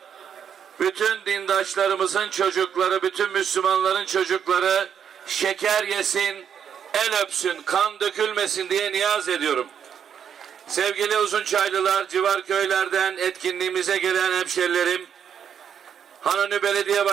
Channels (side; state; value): left; quieter; 8.1 dB